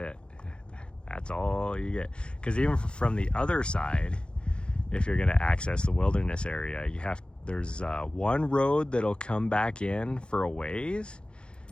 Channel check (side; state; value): right; late; 0.054 ms